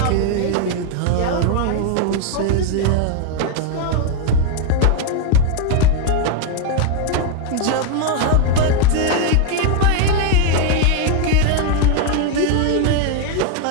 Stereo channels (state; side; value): different; both; correlation 0.01